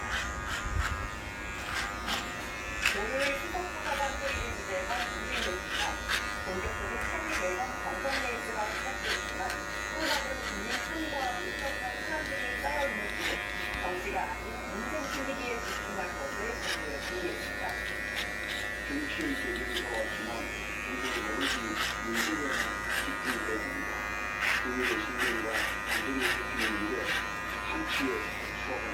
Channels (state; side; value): identical; both; correlation 1.00